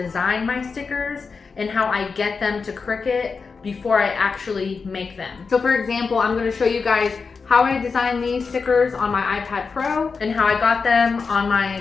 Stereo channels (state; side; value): quieter; right; 5.0 dB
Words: my stickers and how I get them to Cricut before I actually make them. So for example, I'm going to show you guys how I designed these stickers on my iPad Pro and how I got them on